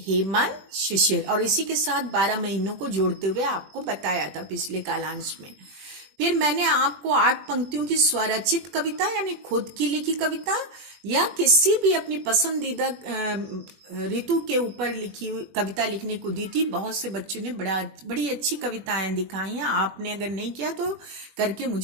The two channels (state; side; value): late; left; 20 ms